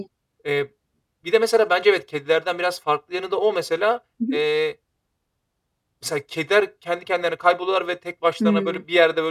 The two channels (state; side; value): identical; both; correlation 1.00